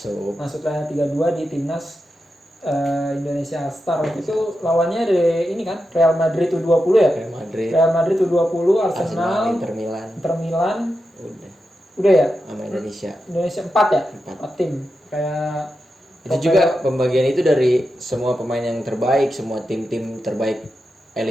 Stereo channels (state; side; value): normal; both; correlation 0.89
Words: Masuk line up 32 di timnas Indonesia All Star. Waktu itu lawannya dari ini kan Real Madrid U20 ya? Real Madrid U20, Arsenal, Inter Milan. Udah ya? Sama Indonesia 4 ya? 4 tim. Kayak itu juga pembagian itu dari semua pemain yang terbaik, semua tim-tim terbaik